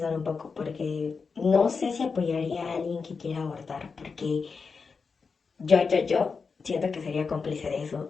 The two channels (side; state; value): right; quieter; 5.0 dB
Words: un poco, porque no sé si apoyaría a alguien que quiera abortar, porque yo siento que sería cómplice de